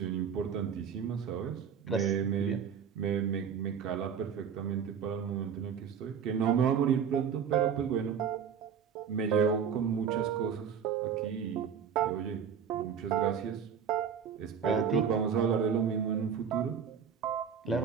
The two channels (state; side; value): quieter; left; 7.4 dB